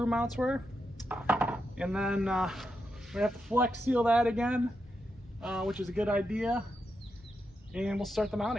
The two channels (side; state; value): both; normal; correlation 0.85